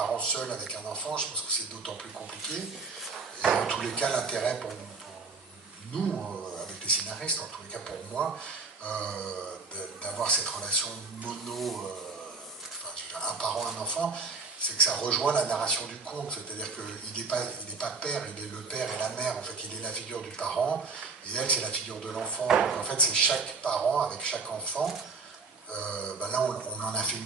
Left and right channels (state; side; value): quieter; left; 4.5 dB